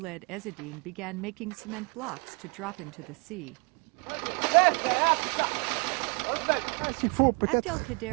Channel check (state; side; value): quieter; left; 33.9 dB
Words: Ezzedine began making cement blocks to drop into the sea.